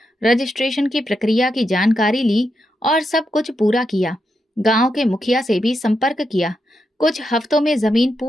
रजिस्ट्रेशन की प्रक्रिया की जानकारी ली और सब कुछ पूरा किया। गांव के मुखिया से भी संपर्क किया। कुछ हफ्तों में जमीन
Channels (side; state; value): both; normal; correlation 0.84